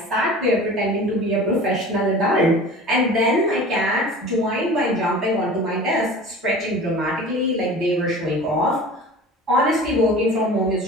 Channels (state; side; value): normal; both; correlation 0.39